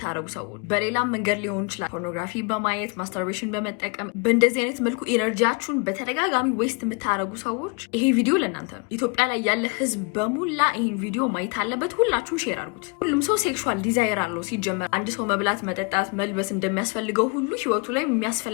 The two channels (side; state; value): right; quieter; 33.2 dB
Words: ሰዎች በሌላም መንገድ ሊሆን ይችላል፣ ፖርኖግራፊ በማየት ማስተርቤሽን በመጠቀም በእንደዚህ አይነት መልኩ ኢነርጂያችሁን በተደጋጋሚ ዌስት የምታደርጉ ሰዎች ይሄ ቪዲዮ ለእናንተ ነው። ኢትዮጵያ ላይ ያለ ህዝብ በሙላ ይህን ቪዲዮ ማየት አለበት። ሁላችሁም ሼር አድርጉት። ሁሉም ሰው ሴክሹዋል ዲዛይር አለው። ሲጀመር አንድ ሰው መብላት፣ መጠጣት፣ መልበስ እንደሚያስፈልገው ሁሉ ህይወቱ ላይ